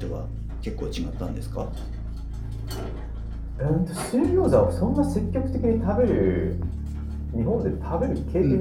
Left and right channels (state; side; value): identical; both; correlation 1.00